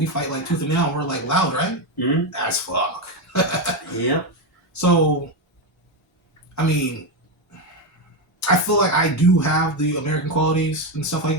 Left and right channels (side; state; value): both; normal; correlation 0.10